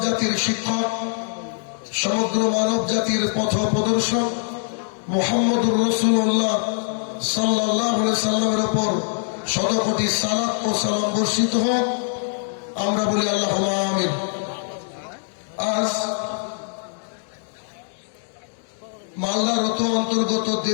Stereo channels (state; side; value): silent; right; digital silence